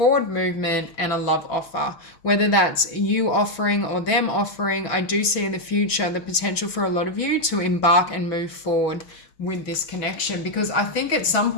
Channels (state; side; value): late; right; 6.1 ms